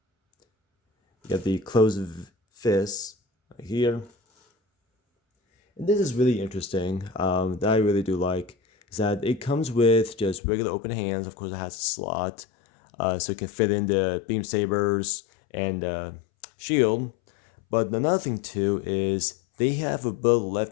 You have the closed fist right here. And this is really interesting, that I really do like, is that it comes with just regular open hands. Of course, it has a slot, so it can fit in the beam sabers and shield. But another thing too is they have for both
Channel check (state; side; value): drops out; right; at 10.4 s